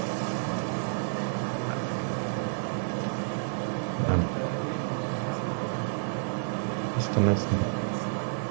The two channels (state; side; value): silent; left; 58 dB below the other